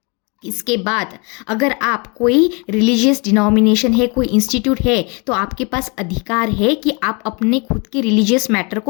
इसके बाद अगर आप कोई रिलीजियस डिनोमिनेशन है, कोई इंस्टीट्यूट है, तो आपके पास अधिकार है कि आप अपने खुद के रिलीजियस मैटर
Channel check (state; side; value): quieter; right; 31.2 dB